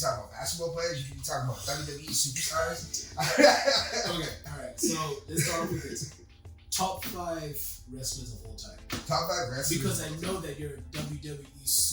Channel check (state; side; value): identical; both; correlation 1.00